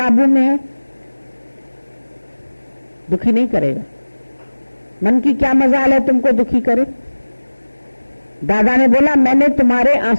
में है, दुखी नहीं करेगा। मन की क्या मजाल है तुमको दुखी करे? दादा ने बोला मैंने तुम्हारे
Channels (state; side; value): inverted; both; correlation -1.00